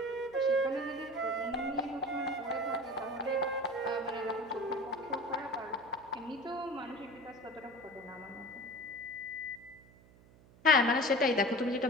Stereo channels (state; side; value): noise; right; hum, 25 dB below the sound